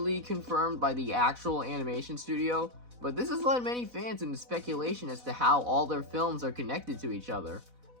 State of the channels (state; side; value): late; left; 4.0 ms